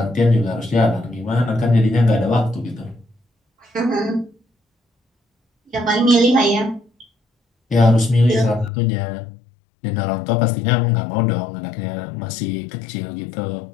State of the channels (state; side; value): drops out; right; at 8.7 s